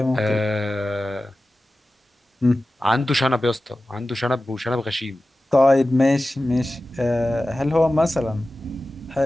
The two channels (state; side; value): normal; both; correlation 0.95